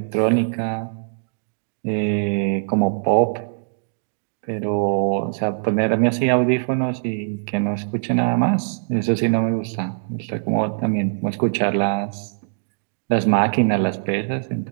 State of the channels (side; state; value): left; silent; digital silence